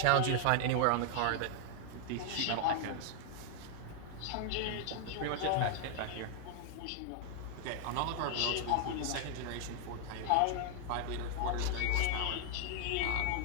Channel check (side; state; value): both; different; correlation 0.00